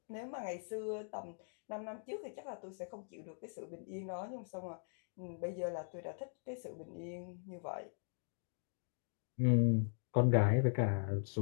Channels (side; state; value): right; silent; digital silence